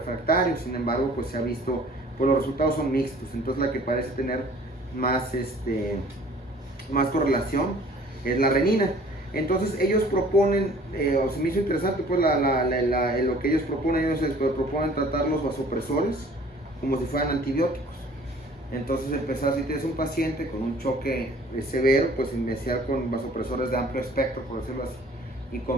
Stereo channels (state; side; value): normal; both; correlation 0.52